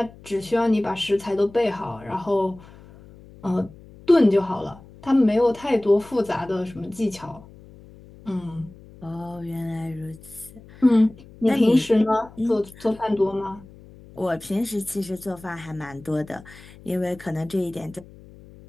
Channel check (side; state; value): left; noise; hum, 21 dB below the sound